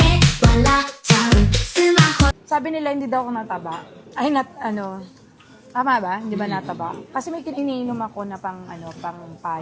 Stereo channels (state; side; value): identical; both; correlation 1.00